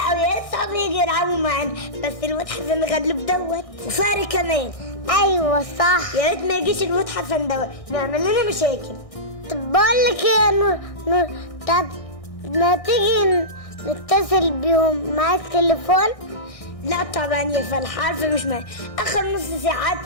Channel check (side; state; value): right; late; 1.6 ms